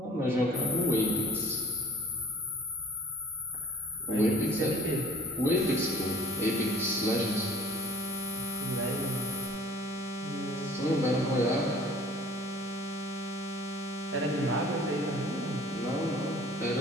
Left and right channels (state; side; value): normal; both; correlation 0.49